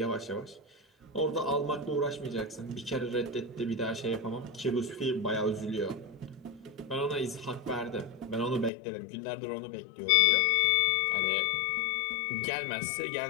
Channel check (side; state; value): right; drops out; at 8.7 s